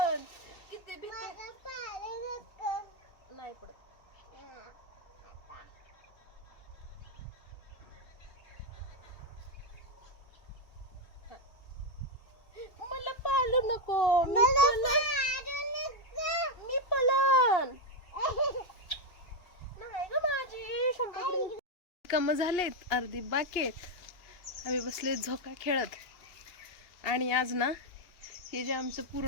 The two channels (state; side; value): late; right; 2.8 ms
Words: किती भीती नाही पडत. मला पाळू नको, मी पलन नाही ग माझी. काम झालेत, अर्धी बाकी आहेत. आम्ही बसले झोका खेळत. आणि आज ना हे जे आमचं